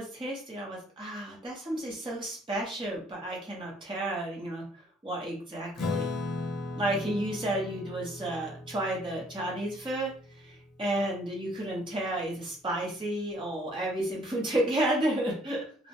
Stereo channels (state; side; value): normal; both; correlation 0.61